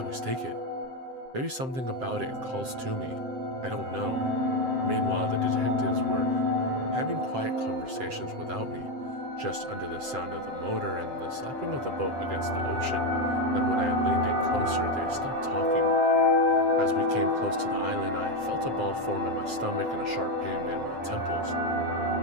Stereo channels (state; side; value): late; left; 7.7 ms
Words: take it. Maybe something about it calls to me. I don't know. Meanwhile, the detectives were having quiet conversations without me, just under the sound of the motor and the slapping of the boat against the ocean, and when I leaned in closer, they stopped talking. As we came close to the island, I felt a ball form in my stomach and a sharp pain in my temples.